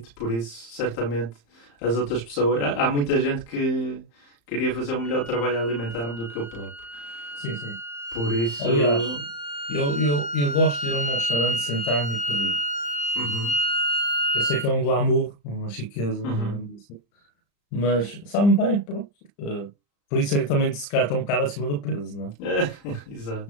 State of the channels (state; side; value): late; right; 35 ms